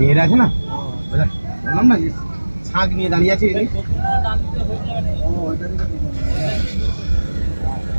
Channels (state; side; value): inverted; both; correlation -1.00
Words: আছে না, বললাম না যে শাক নিয়ে দাঁড়িয়ে আছে এদিকে। ও, ওইটা দিকে ঢুকে গেছে।